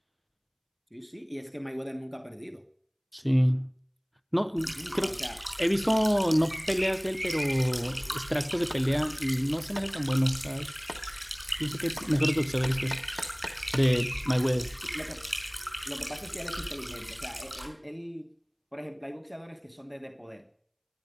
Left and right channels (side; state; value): both; identical; correlation 1.00